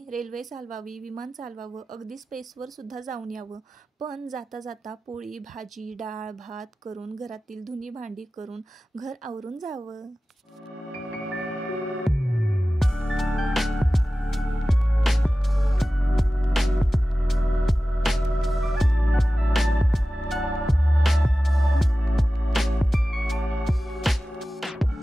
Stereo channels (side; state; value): both; normal; correlation 0.95